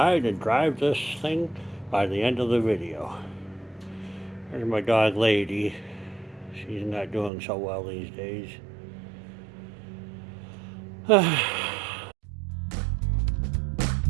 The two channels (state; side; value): drops out; left; at 7.3 s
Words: and drive this thing by the end of the video. There's my dog Lady. She's not doing so well these days.